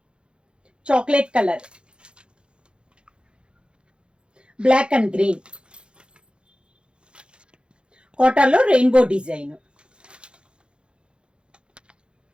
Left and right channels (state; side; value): late; left; 0.054 ms